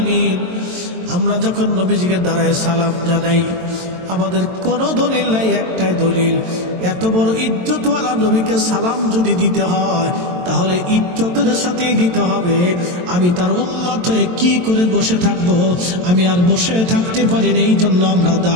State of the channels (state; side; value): late; left; 22 ms